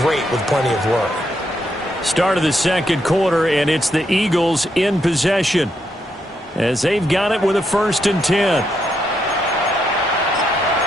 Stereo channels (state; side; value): normal; both; correlation 0.79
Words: with plenty of work. Start of the second quarter, and it's the Eagles in possession as they've got it with a 1st and 10.